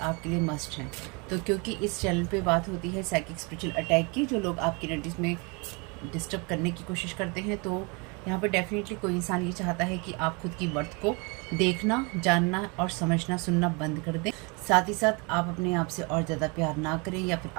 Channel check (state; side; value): quieter; left; 30.4 dB